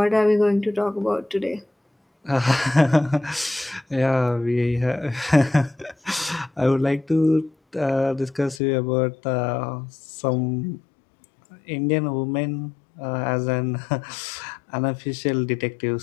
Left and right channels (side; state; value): right; drops out; at 8.6 s